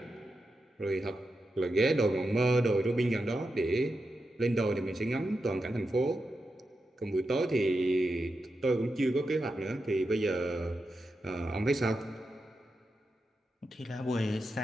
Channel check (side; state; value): both; normal; correlation 0.88